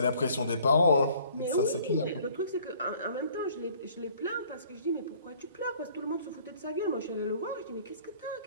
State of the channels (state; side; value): inverted; both; correlation -0.56